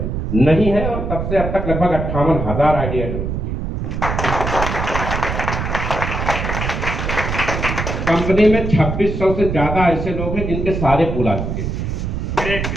नहीं है, और तब से अब तक लगभग 58,000 आईडी ऐड हो चुकी है। कंपनी में 2600 से ज्यादा ऐसे लोग हैं जिनके सारे पूल आ चुके हैं।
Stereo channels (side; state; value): right; noise; rumble, 3 dB below the sound